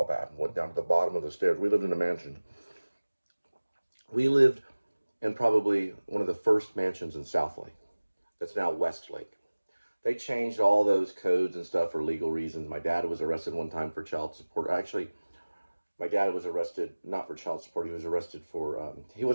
bat and went down to the bottom of the stairs. We lived in a mansion. We lived in probably one of the first mansions in Southlake. That's now Westlake. They changed all those codes and stuff for legal reasons. My dad was arrested one time for child support. Actually, my dad was arrested not for child support. He was arrested for, he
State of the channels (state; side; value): inverted; both; correlation -1.00